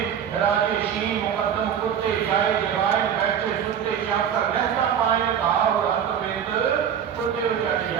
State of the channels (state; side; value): quieter; left; 8.6 dB